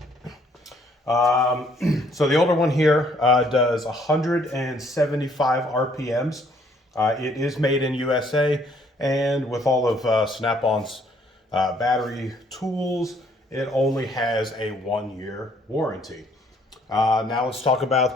So the older one here does 175 RPMs. It is made in USA, and with all of Snap-on's battery tools, it only has a 1-year warranty. Now let's talk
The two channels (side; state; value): both; normal; correlation 0.64